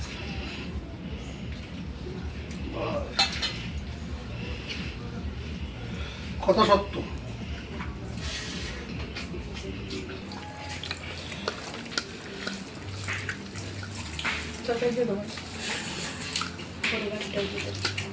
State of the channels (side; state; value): both; identical; correlation 1.00